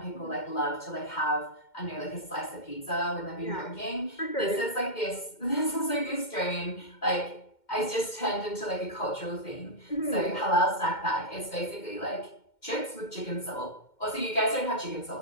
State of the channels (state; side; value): late; right; 2.1 ms